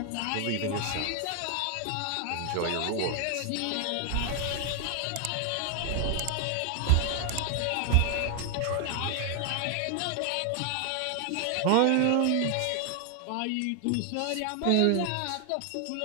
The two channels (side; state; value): both; different; correlation 0.00